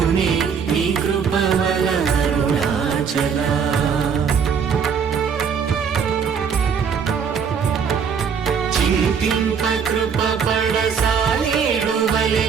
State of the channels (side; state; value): left; quieter; 6.6 dB